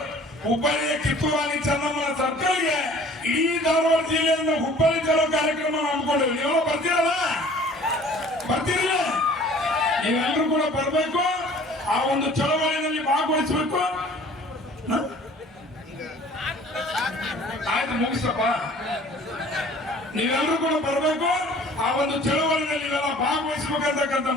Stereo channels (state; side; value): normal; both; correlation 0.50